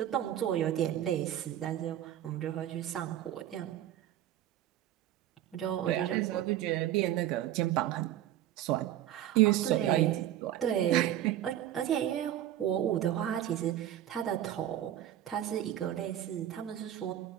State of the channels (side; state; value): left; quieter; 12.1 dB